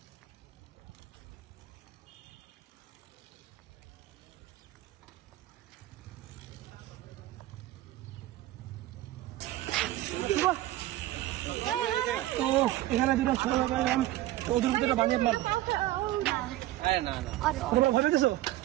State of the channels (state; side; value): quieter; left; 15.4 dB